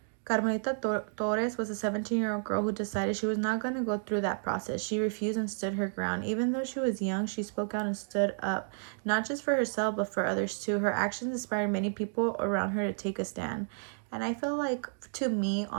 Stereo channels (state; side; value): silent; left; digital silence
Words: Carmelita Torres was a 17-year-old girl who decided she was not going to go through that process. She refused and stood her ground. Even though she was young, she spoke out and stood up, not just for herself, but for others too. Her actions inspired many people around her to take a stand. And I feel like, to me,